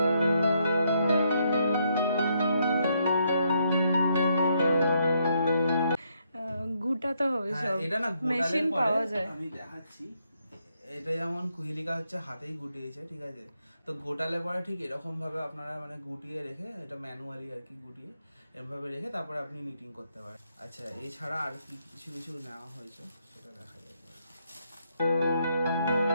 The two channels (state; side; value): inverted; both; correlation -0.76